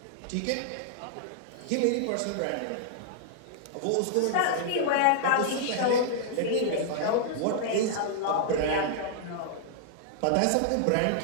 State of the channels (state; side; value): different; both; correlation -0.01